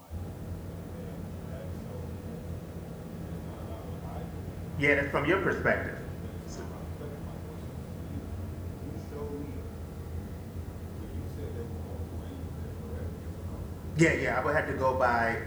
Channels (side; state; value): both; identical; correlation 1.00